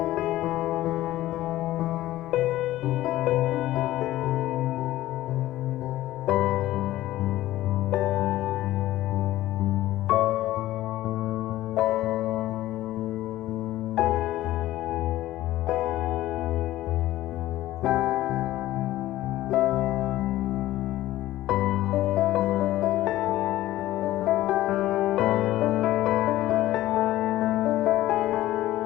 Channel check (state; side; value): quieter; right; 15.3 dB